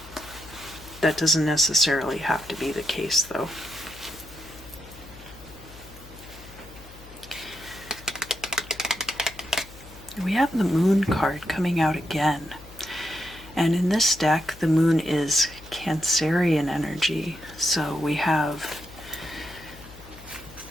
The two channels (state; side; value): noise; left; hum, 19 dB below the sound